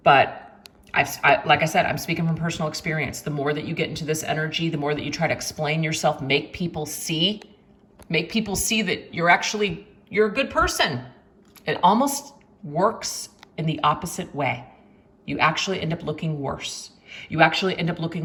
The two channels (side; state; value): both; identical; correlation 1.00